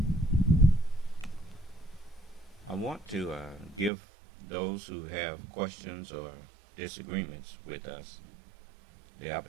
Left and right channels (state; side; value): drops out; left; at 3.9 s